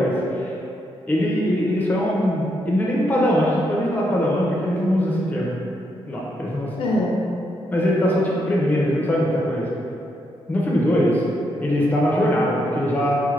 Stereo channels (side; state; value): both; normal; correlation 0.79